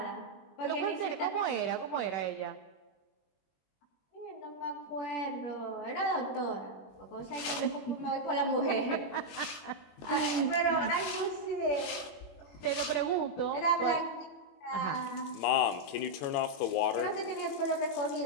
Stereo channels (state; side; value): late; right; 21 ms